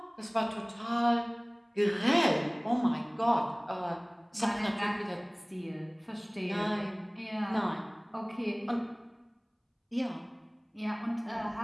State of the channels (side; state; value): both; identical; correlation 1.00